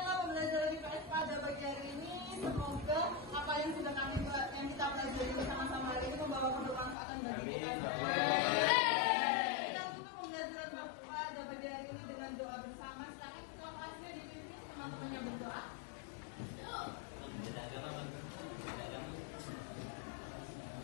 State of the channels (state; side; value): drops out; right; at 7.0 s